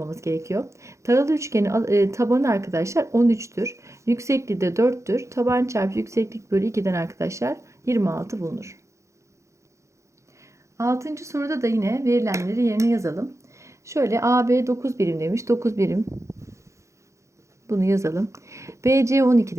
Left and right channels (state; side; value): late; left; 0.14 ms